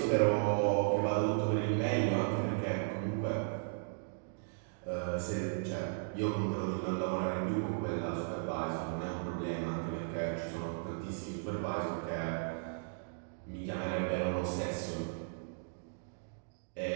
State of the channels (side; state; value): left; silent; digital silence